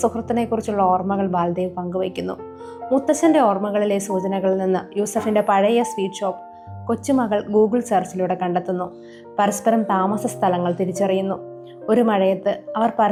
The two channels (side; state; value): both; identical; correlation 1.00